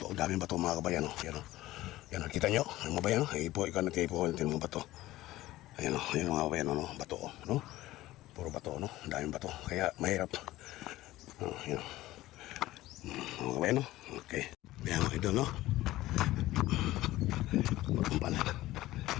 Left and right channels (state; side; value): quieter; right; 16.6 dB